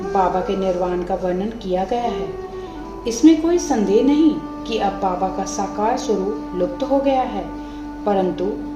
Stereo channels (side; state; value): both; identical; correlation 1.00